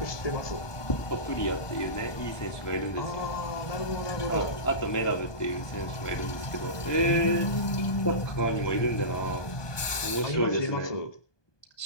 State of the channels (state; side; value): late; right; 1.2 ms